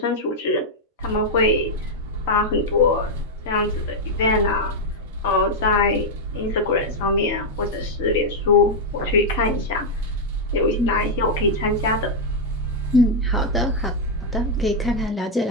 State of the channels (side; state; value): both; normal; correlation -0.01